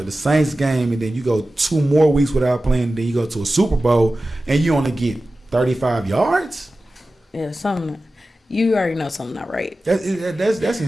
the Saints game, and then you go 2 more weeks without playing, then you go to a Super Bowl and you only get 35 yards. Yeah, something. you already know something not right. That's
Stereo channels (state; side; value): normal; both; correlation 0.95